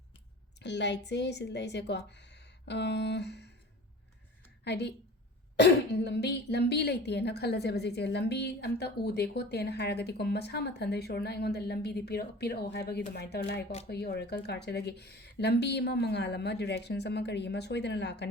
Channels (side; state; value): both; normal; correlation 0.40